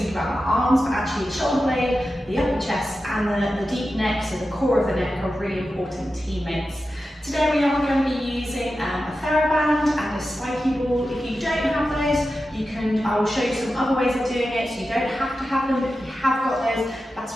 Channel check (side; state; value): both; normal; correlation 0.92